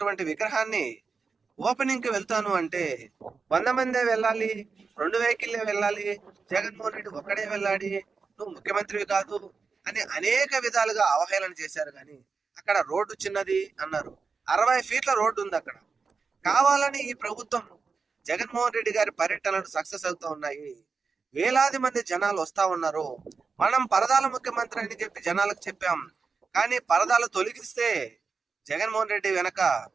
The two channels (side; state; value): left; quieter; 4.9 dB